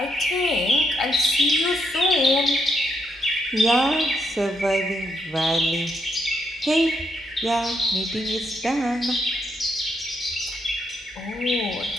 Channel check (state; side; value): normal; both; correlation 0.78